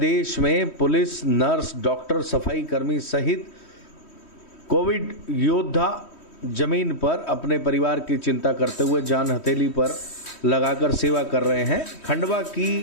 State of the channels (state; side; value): late; right; 3.1 ms